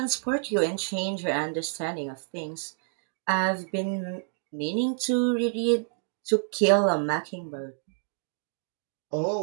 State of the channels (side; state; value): left; silent; 59 dB below the other